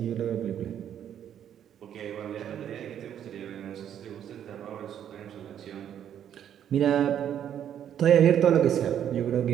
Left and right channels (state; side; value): quieter; left; 9.7 dB